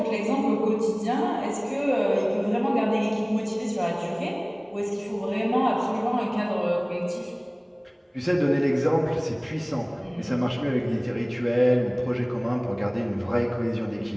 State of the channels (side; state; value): both; identical; correlation 1.00